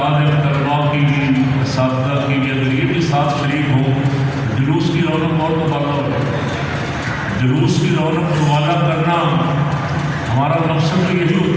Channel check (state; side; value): identical; both; correlation 1.00